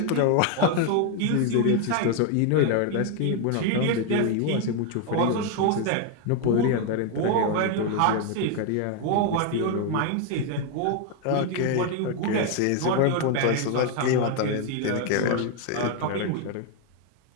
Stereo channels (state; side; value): different; both; correlation 0.01